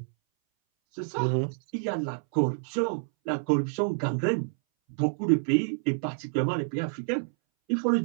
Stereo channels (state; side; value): silent; left; 59 dB below the other